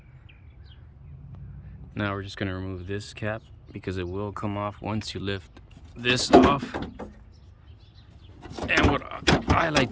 Now we're just gonna remove this cap because it will come off once you lift this off. And what I like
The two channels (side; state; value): both; identical; correlation 1.00